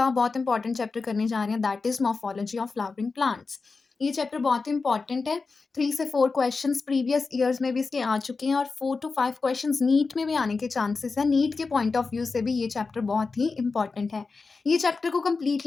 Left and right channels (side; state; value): right; quieter; 4.3 dB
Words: बहुत इंपॉर्टेंट चैप्टर करने जा रहे हैं, that is morphology of flowering plants. ये चैप्टर बहुत इंपॉर्टेंट है। 3 से 4 क्वेश्चंस प्रीवियस ईयर्स में भी इसके आ चुके हैं और 4 to 5 क्वेश्चंस नीट में भी आने के चांसेस हैं। नीट के पॉइंट ऑफ व्यू से भी ये चैप्टर बहुत ही इंपॉर्टेंट है। ये चैप्टर को